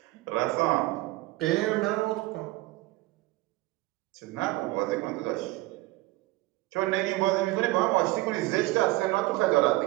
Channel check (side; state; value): left; quieter; 19.5 dB